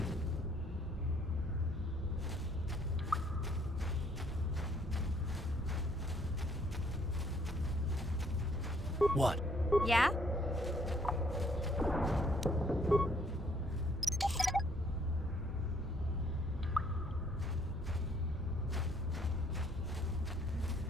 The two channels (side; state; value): both; normal; correlation 0.64